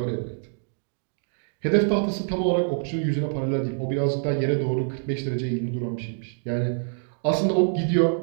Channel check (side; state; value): left; silent; digital silence